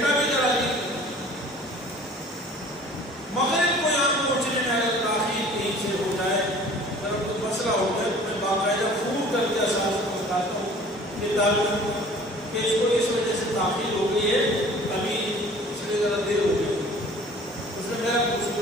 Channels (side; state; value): both; normal; correlation 0.48